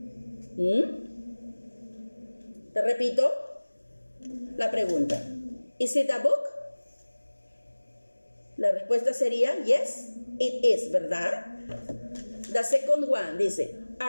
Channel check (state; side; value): inverted; both; correlation -1.00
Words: Te repito la pregunta. Is it a book? La respuesta sería yes, it is, ¿verdad? The second one dice,